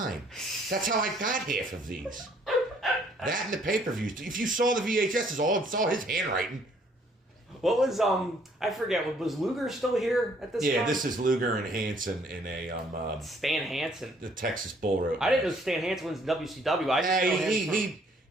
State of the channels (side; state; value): both; normal; correlation 0.63